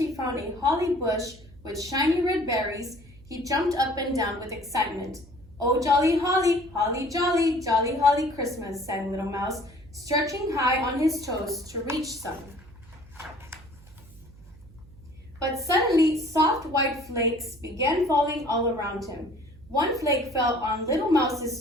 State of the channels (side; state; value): right; noise; hum, 23 dB below the sound